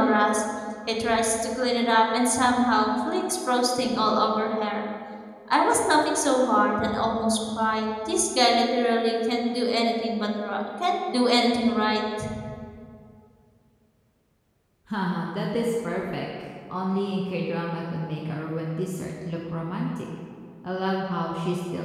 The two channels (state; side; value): identical; both; correlation 1.00